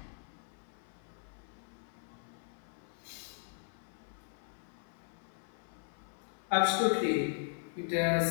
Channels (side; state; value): right; silent; 52 dB below the other